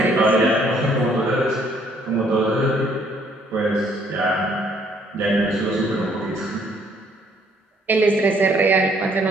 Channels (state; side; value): normal; both; correlation 0.65